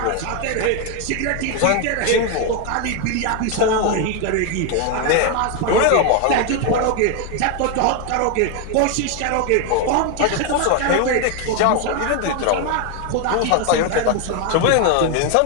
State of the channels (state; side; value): different; both; correlation 0.01